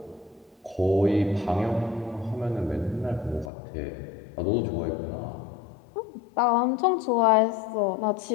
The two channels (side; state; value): right; drops out; at 3.5 s